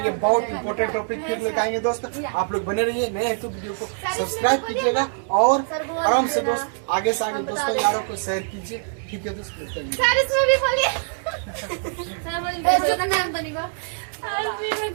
बहुत इंपॉर्टेंट टॉपिक फिर लेकर आएंगे दोस्त। आप लोग बने रहिए, नए हैं तो वीडियो को सब्सक्राइब कीजिएगा और आराम से दोस्त आगे से आगे दोस्तों यारों को शेयर कीजिए। ठीक है दोस्त, मिलते हैं। सर इसमें भी बोलिए। सर बोलिए तो नाम तो नहीं को।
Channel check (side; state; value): left; silent; digital silence